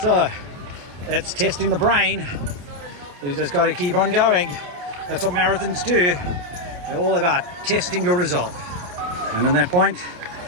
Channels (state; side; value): late; left; 28 ms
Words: it's testing the brain. You just got to keep on going. That's what marathons do. They're all about testing your resolve. And in that point,